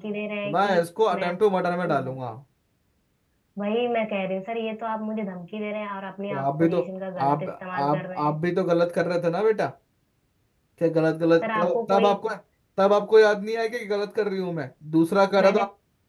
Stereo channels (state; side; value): identical; both; correlation 1.00